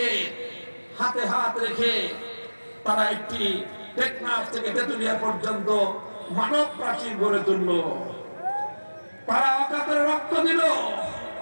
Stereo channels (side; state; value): both; inverted; correlation -1.00